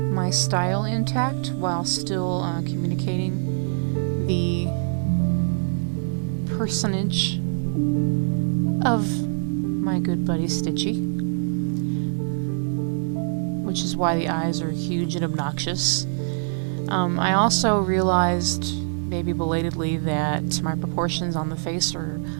style intact while still communicating the personage of my good buddy Stitchy, which is why the eyes are huge and obnoxious. I also realized, maybe belatedly, that my proportions on the face are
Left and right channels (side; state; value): left; silent; 63 dB below the other